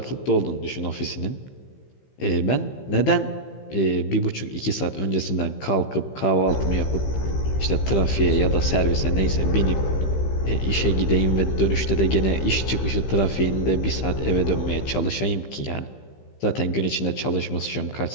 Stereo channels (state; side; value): late; right; 15 ms